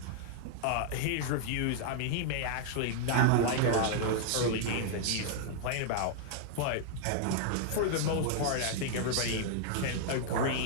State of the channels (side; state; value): both; different; correlation -0.01